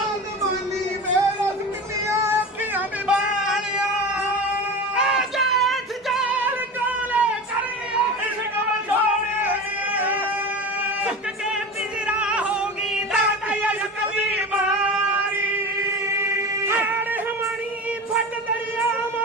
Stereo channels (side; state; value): both; normal; correlation 0.30